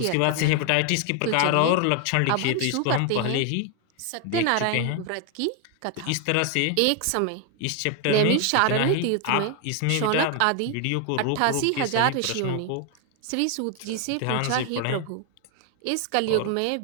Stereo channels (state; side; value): different; both; correlation 0.01